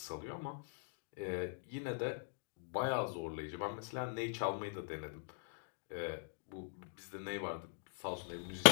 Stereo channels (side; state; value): right; silent; digital silence